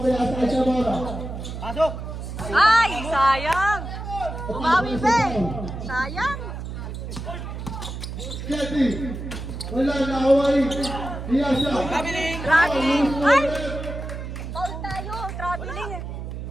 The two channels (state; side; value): noise; right; hum, 7 dB below the sound